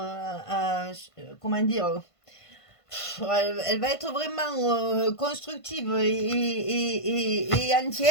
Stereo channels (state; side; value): late; right; 1.5 ms